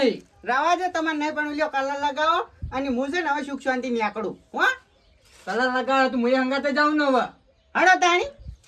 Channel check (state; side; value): identical; both; correlation 1.00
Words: રવા દે તમારે નહીં પણ લ્યો કલર લગાવો અને હું છે ને હવે સુખ શાંતિ નીકળું હો. કલર લગાવે તો હું હંગાતે જાઉં ને હવે. હડો તાણી